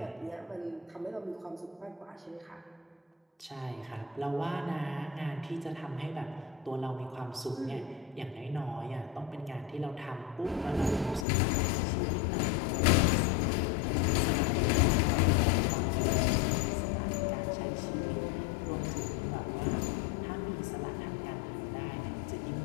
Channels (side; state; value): right; drops out; at 11.2 s